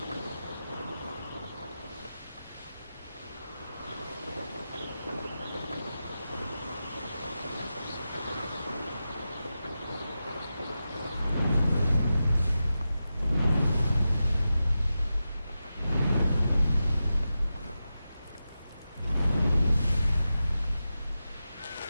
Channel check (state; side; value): inverted; both; correlation -0.92